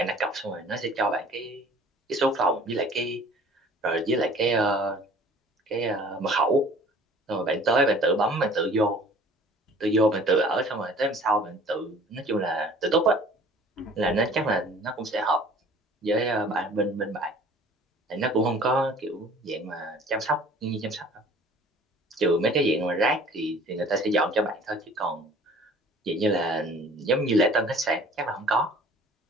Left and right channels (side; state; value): both; normal; correlation 0.49